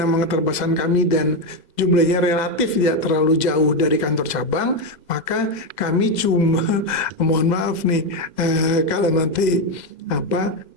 memang keterbatasan kami dan jumlahnya relatif tidak terlalu jauh dari kantor cabang, maka kami cuma, mohon maaf nih, kalau nanti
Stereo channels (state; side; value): late; right; 2.0 ms